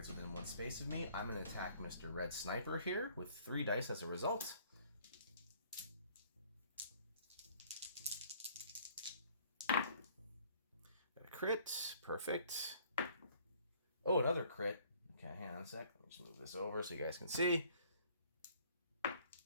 within 1 space of me. I'm going to attack Mr. Red Sniper here with 3 dice as a result. Got a crit. Perfect. Oh, another crit. Okay, hang on a sec. Let me just move this over so you guys can see.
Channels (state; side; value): inverted; both; correlation -0.58